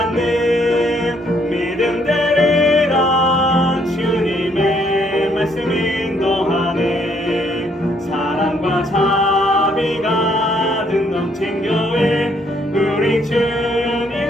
믿음 되리라 주님의 말씀 인도하네 사랑과 자비가 든 넘친 교회 우리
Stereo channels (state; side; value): normal; both; correlation 0.69